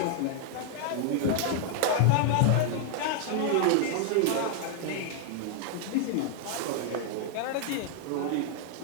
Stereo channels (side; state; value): both; different; correlation 0.00